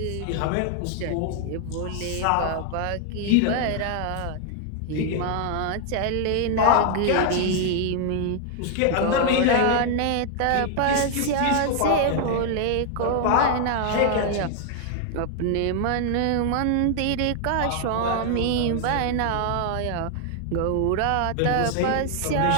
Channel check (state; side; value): different; both; correlation 0.00